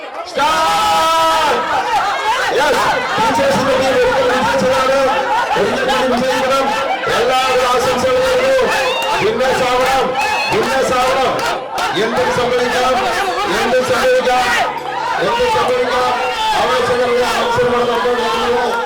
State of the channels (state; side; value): identical; both; correlation 1.00